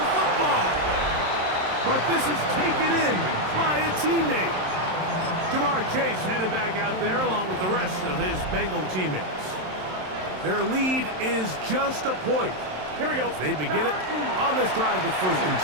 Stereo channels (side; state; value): left; late; 27 ms